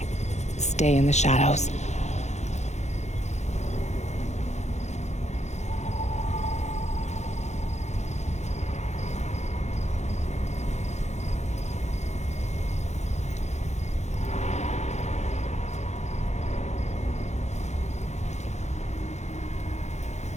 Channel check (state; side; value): late; right; 0.33 ms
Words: Stay in the shadows.